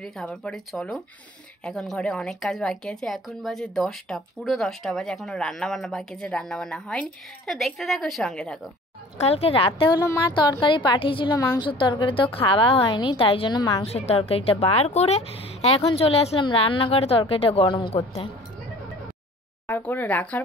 খাবার পরে চলো এখন ঘরে অনেক কাজ বাকি আছে। এখন বাজে 10টা, পুরো 10টা বাজে, এখনও রান্নাবান্না বাকি আছে, রান্নাবান্না হয়নি। তো দেখতে থাকো, সঙ্গে থাকো। কালকে রাতে হলো মা তরকারি পাঠিয়েছিল, মাংসের তরকারি, তো খাওয়া হয়নি, তাই জন্য মাংসের তরকারিটা বার করে এখন চলে আসলাম রান্নাঘরে তরকারিটা গরম করতে। বার করে রাখার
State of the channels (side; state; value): both; normal; correlation 0.47